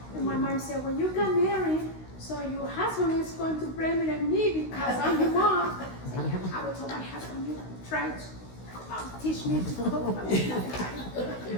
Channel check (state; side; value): late; right; 16 ms